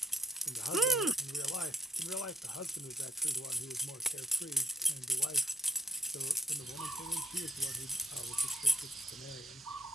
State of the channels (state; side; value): normal; both; correlation 0.61